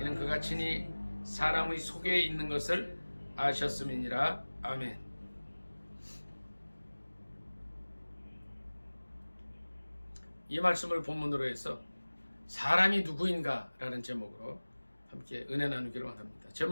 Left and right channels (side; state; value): both; inverted; correlation -1.00